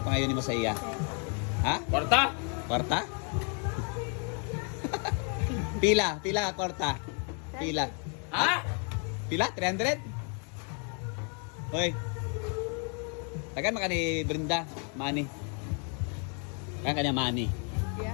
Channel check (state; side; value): quieter; right; 39.9 dB